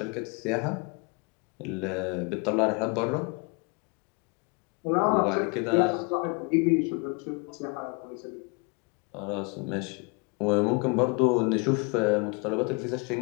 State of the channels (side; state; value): right; quieter; 31.4 dB